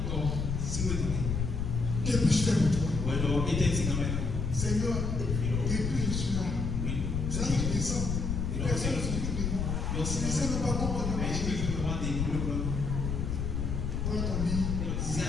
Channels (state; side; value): noise; left; rumble, 1 dB below the sound